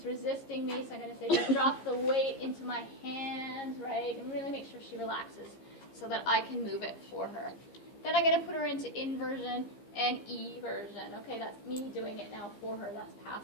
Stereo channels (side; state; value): right; late; 15 ms